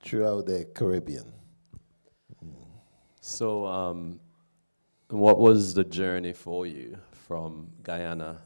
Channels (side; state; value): both; inverted; correlation -1.00